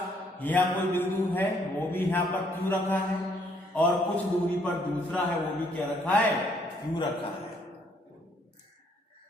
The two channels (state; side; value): normal; both; correlation 0.67